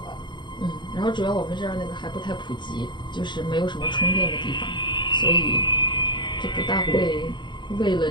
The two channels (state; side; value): late; right; 0.22 ms